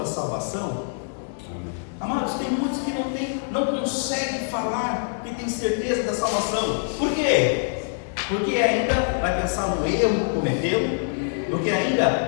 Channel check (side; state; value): right; silent; digital silence